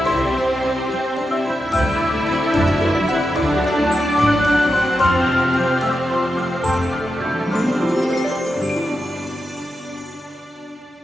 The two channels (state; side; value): normal; both; correlation 0.88